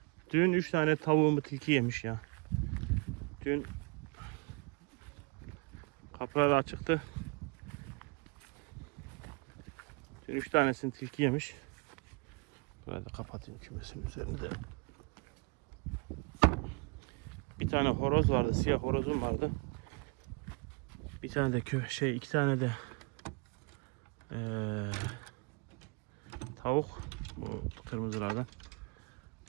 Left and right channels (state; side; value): quieter; left; 31.4 dB